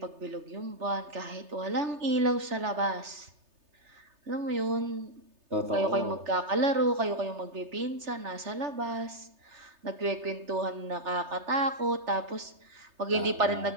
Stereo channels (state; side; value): late; left; 3.3 ms